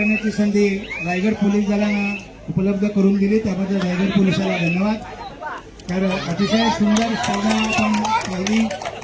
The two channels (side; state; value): both; identical; correlation 1.00